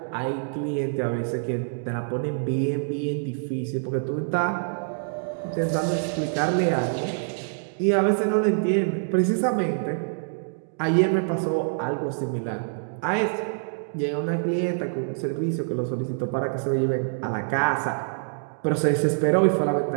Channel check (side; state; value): left; silent; digital silence